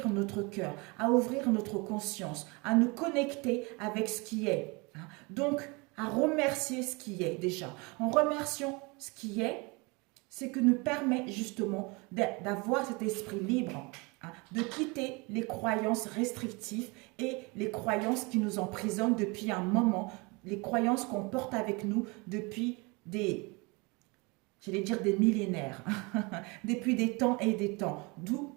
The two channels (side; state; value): left; quieter; 27.9 dB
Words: notre cœur, à ouvrir notre conscience, à nous connecter avec ce qui est. Donc, à remercier ce qui est déjà. En remerciant ce qui est, c'est que nous permet justement d'avoir cet esprit libre, de quitter les croyances restrictives et les croyances qui nous emprisonnent depuis un moment, les croyances qu'on porte avec nous depuis des millénaires, depuis des temps et des temps. D'où